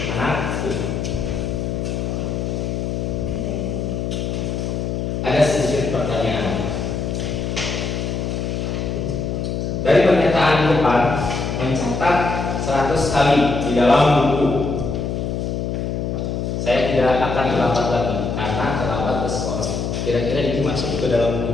anak kita. Ada sedikit mencatat 100 kali di dalam buku. Saya tidak akan terlambat lagi karena terlambat ke sekolah. Kira-kira ini masuk ke dalam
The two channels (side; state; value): left; noise; hum, 2 dB below the sound